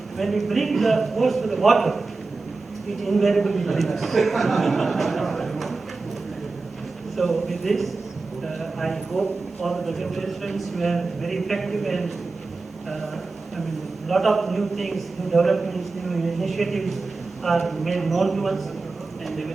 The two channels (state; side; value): quieter; left; 3.8 dB